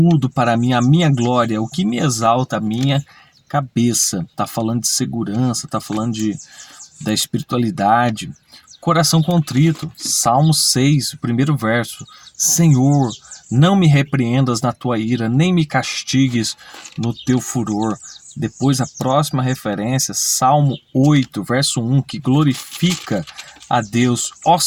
para mim, a minha glória, o que me exalta a minha cabeça. Está falando de segurança, está falando da espiritualidade. Coração contrito, Salmo 6, o primeiro verso. Senhor, não me repreendas na tua ira, nem me castigues no teu furor. Depois a próxima referência, Salmo 8, verso 1, que glorifica a Deus. Ó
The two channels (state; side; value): identical; both; correlation 1.00